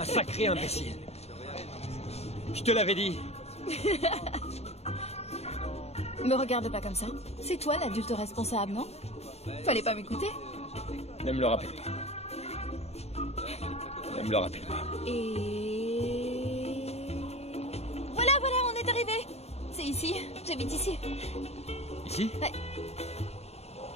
sacré imbécile. Je te l'avais dit. Me regarde pas comme ça. C'est toi l'adulte responsable, non? Fallait pas m'écouter. Ne me le rappelle pas. Ne me le rappelle pas. Et... Voilà, on est arrivé. C'est ici. J'habite ici. Ici? Ouais.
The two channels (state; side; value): late; right; 0.30 ms